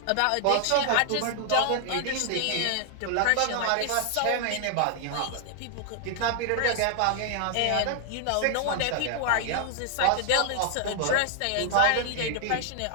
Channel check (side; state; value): both; different; correlation 0.00